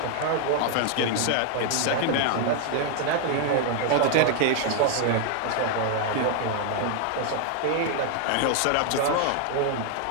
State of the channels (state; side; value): different; both; correlation 0.00